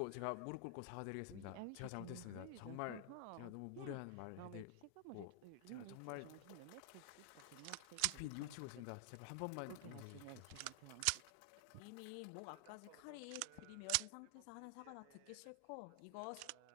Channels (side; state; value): both; different; correlation 0.00